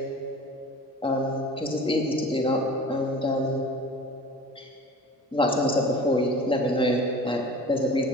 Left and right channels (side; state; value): both; normal; correlation 0.41